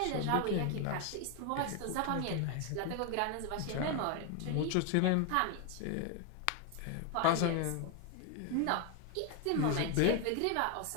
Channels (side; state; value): both; different; correlation 0.01